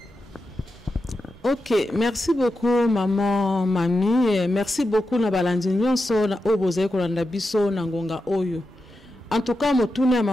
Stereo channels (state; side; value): normal; both; correlation 0.89